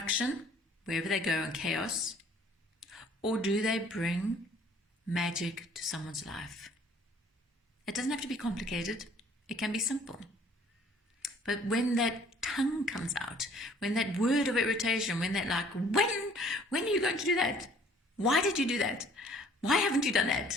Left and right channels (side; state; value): both; normal; correlation 0.56